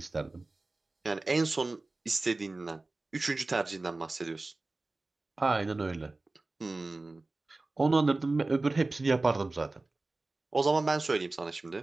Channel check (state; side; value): quieter; left; 3.2 dB